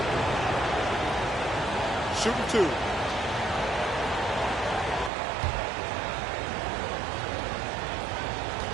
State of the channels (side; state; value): left; drops out; at 5.1 s